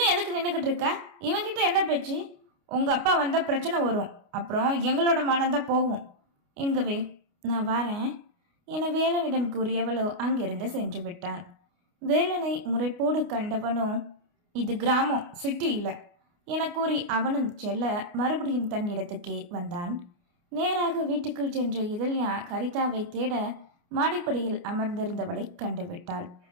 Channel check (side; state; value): left; late; 29 ms